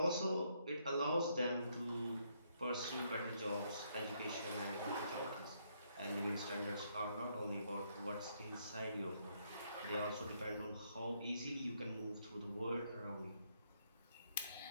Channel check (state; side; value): inverted; both; correlation -0.73